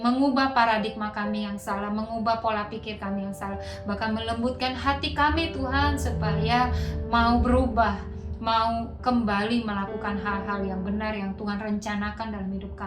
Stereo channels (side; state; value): both; identical; correlation 1.00